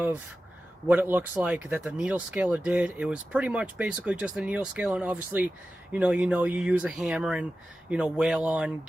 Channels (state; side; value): normal; both; correlation 0.94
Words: what it looks like that the needle scaler did. It was pretty much basically just a needle scaler, and obviously, you use a hammer and, wail on